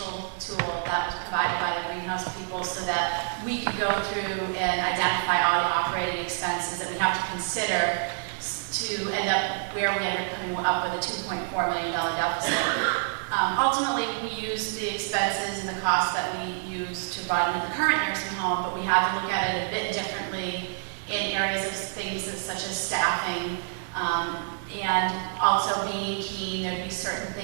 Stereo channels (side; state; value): left; silent; 60 dB below the other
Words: tool that was provided by the greenhouse people so that we could go through and identify all the operating expenses that we have to consider to end up where we ended up coming up with a $2.4 million deficit. Ultimately, we use the expenses and the costs that we use to run the current nursing home, but we have to look at it a bit differently in areas of things such as staffing, and also being Keene, there'd be certain